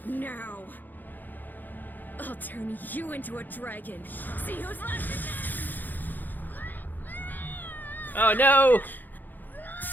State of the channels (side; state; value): right; late; 0.086 ms